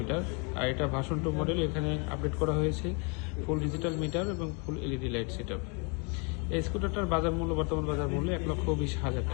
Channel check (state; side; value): quieter; right; 34.3 dB